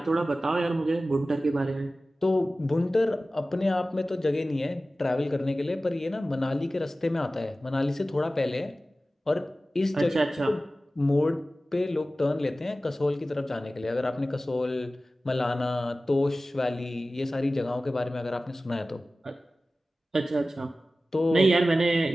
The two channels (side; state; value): both; normal; correlation 0.96